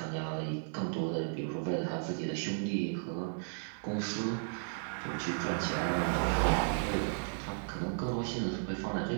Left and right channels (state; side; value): silent; left; digital silence